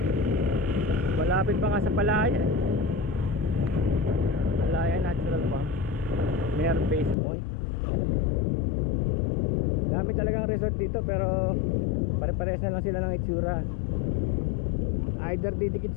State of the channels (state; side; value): drops out; right; at 7.2 s